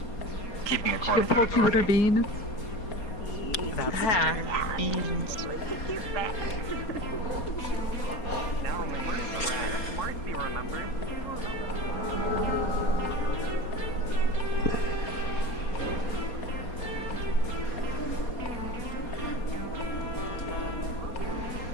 keeping it Your close to poor authority. bean.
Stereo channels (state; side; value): late; right; 4.2 ms